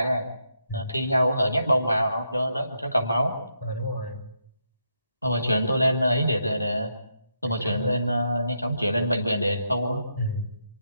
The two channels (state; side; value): inverted; both; correlation -0.80